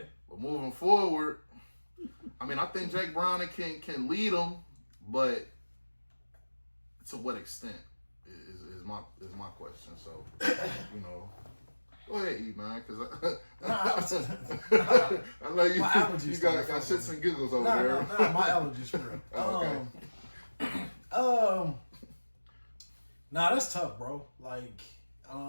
But moving forward, I mean, I think Jake Browning can lead them, but to what extent is my question. So, go ahead, E, man, because I know you got shits and giggles over there. Nah, my allergies for real. Okay. That's tough, bro. Like,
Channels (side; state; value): both; inverted; correlation -1.00